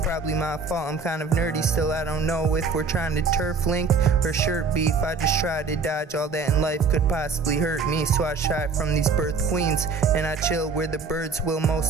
my fault, I'm kind of nerdy. Still I don't know if we're trying to turf link or shirt beef. I just try to dodge all that in life could possibly hurt me. So I shy from these birth queens and I chill where the birds will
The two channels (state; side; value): quieter; left; 4.7 dB